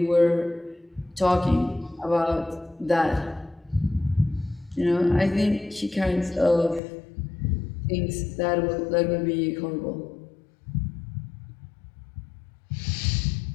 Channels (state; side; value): drops out; right; at 6.8 s